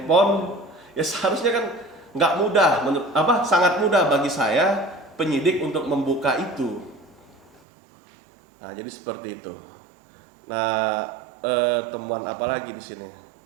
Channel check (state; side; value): drops out; left; at 7.6 s